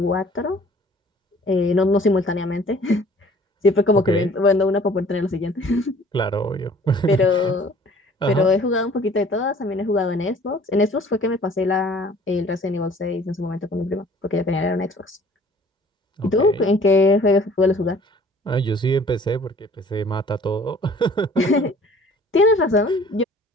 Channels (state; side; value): normal; both; correlation 0.52